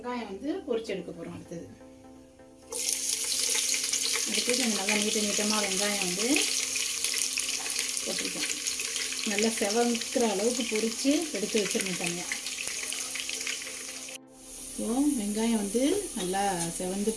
வந்து பொரிச்சு எடுக்க போகிறோம். அடுத்தது கொஞ்சம் நல்லா நீட்டமாக வெங்காயம் வந்து போட்டிருக்கேன். நல்லா செவக்கிற அளவுக்கு பொரித்து எடுத்து வச்சிருக்கேன் தனியாக. ஸோ வெங்காயம் வந்து நல்லா செவந்து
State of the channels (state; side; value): identical; both; correlation 1.00